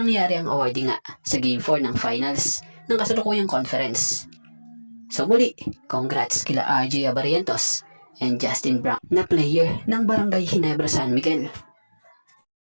ang awarding nga sa Game 4 ng finals ng kasalukuyang conference. So muli, congrats kila RJ Abarientos and Justin Brown na player ng Barangay Ginebra San Miguel.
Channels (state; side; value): inverted; both; correlation -1.00